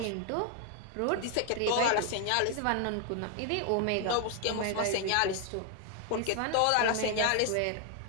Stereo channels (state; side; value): different; both; correlation 0.00